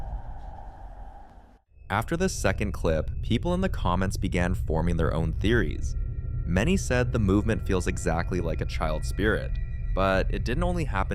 After this second clip, people in the comments began forming their own theories. Many said the movement feels exactly like a child spirit, but it didn't only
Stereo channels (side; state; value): both; identical; correlation 1.00